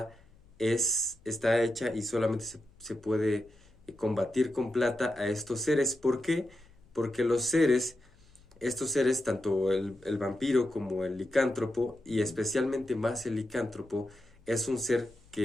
está hecha y solamente se puede combatir con plata a estos seres. ¿Por qué? Porque estos seres, tanto el vampiro como el licántropo, y especialmente más el licántropo, es un ser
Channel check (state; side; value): noise; left; hum, 29 dB below the sound